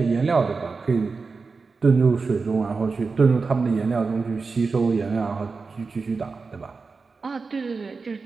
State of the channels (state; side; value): quieter; left; 4.5 dB